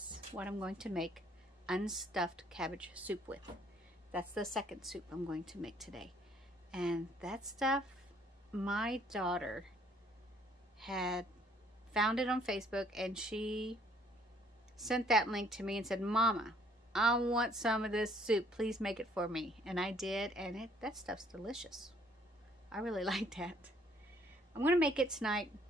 what I'm going to make unstuffed cabbage soup with. That's the second soup I'm going to make today. And that stuff, my daughter had found it on Facebook, and she sent that link to me and said, Mama, I want some of this soup. Please make it for me. And I did, and that stuff's delicious. I really like that. I'm going to make it tonight.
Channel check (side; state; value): both; normal; correlation 0.62